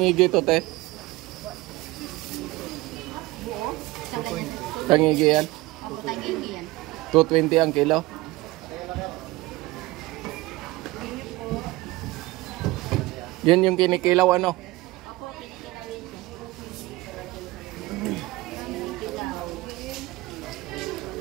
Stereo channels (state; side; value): quieter; left; 20.1 dB